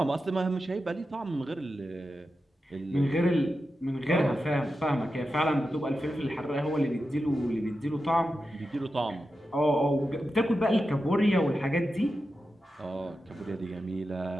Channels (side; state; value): both; normal; correlation 0.90